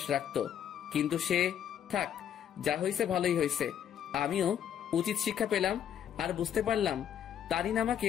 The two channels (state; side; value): quieter; right; 9.5 dB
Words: রাখতো। কিন্তু সে থাক, যা হয়েছে ভালোই হয়েছে। আমিও উচিত শিক্ষা পেলাম আর বুঝতে পারলাম তারিন আমাকে